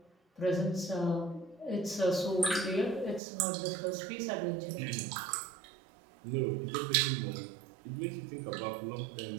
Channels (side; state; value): left; drops out; at 3.2 s